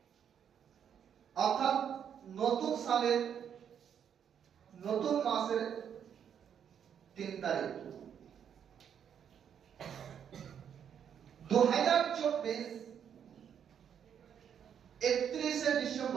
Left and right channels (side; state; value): left; quieter; 8.4 dB